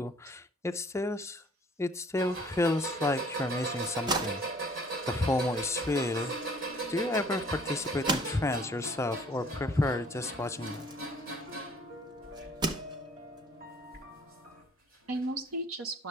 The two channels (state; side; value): normal; both; correlation 0.56